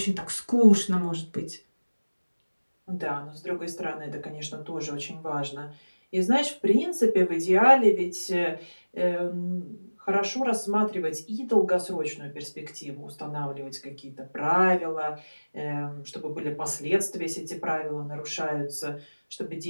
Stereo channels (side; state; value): both; inverted; correlation -1.00